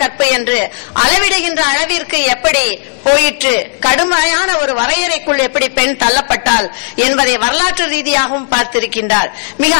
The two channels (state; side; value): silent; right; digital silence